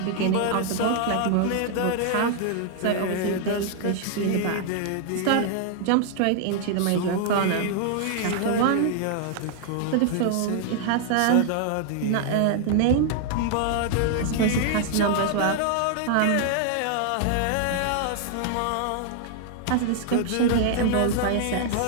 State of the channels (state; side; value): different; both; correlation 0.00